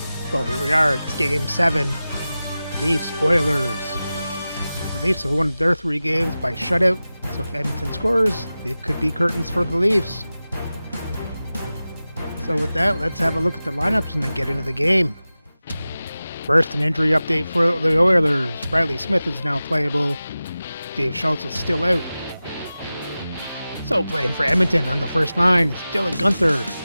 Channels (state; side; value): inverted; both; correlation -0.95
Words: Well, here we are. It's Game 7. Leafs, Oilers. The Leafs have won their 3 games by shutout, so if Edmonton scores, it could be curtains for the Leafs. So with that, let's have a look at the lineups and then get into the game. First, an injury update for the Oilers. Riley Smith is now playable. Dave Schultz is still out. So playing for Edmonton on the first line is Dylan Guenther,